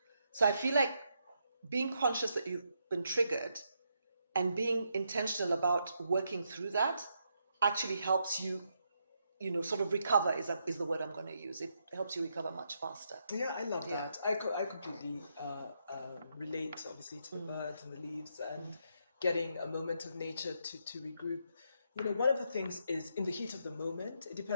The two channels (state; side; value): inverted; both; correlation -0.79